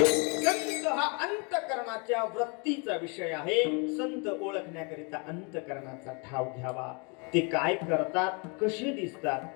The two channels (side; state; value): right; quieter; 33.3 dB